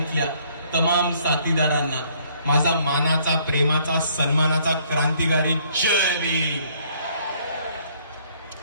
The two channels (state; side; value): inverted; both; correlation -0.63